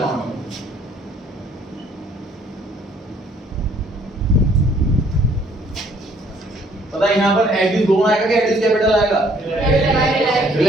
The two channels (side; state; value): both; normal; correlation 0.62